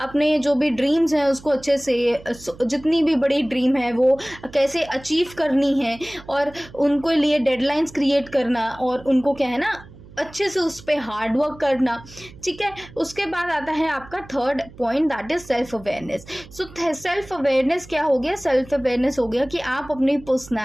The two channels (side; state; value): right; noise; hum, 20 dB below the sound